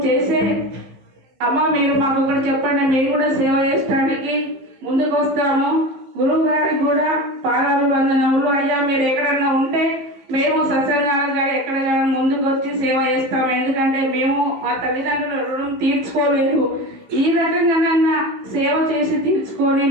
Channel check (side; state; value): left; late; 15 ms